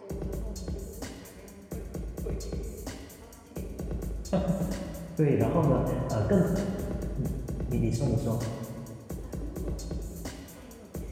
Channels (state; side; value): identical; both; correlation 1.00